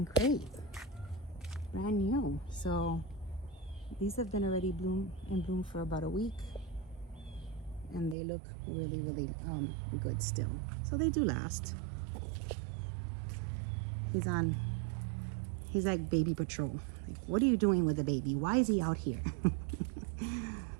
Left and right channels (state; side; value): drops out; left; at 8.2 s